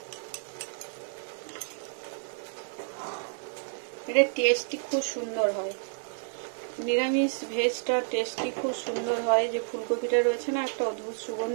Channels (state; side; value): silent; left; digital silence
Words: এটা টেস্টই খুব সুন্দর হয়, নিরামিষ ভেজটা টেস্টই খুব সুন্দর হয়। যে ফুলকপিটা রয়েছে না, একটা অদ্ভুত